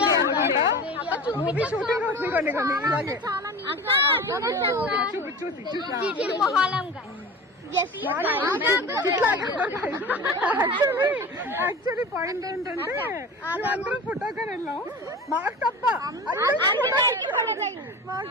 Movie shooting అవుతుంది కొన్ని ఇలాగే చూసి యాక్చువల్లీ పాయింట్ ఏంటంటే అందరం ఫోటోకి వెళ్ళాం. మాకు తప్ప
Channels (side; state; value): both; normal; correlation 0.34